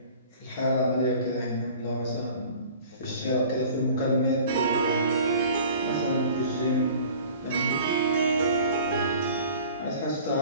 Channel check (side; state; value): both; inverted; correlation -0.46